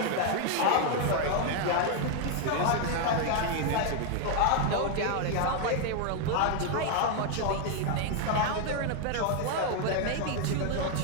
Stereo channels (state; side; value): different; both; correlation 0.01